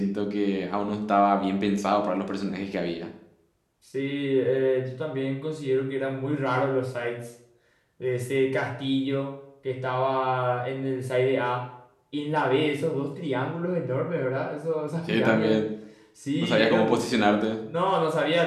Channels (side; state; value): both; identical; correlation 1.00